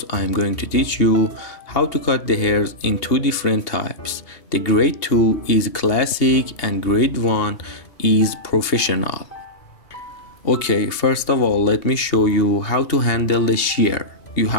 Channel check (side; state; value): right; late; 2.8 ms